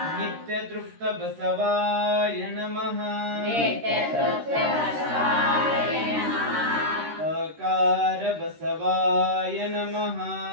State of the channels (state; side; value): late; left; 13 ms